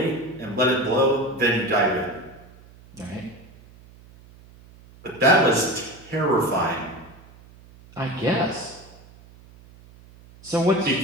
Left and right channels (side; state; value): right; noise; hum, 23 dB below the sound